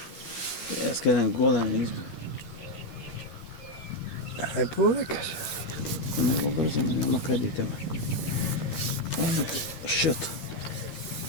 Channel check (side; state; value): right; late; 13 ms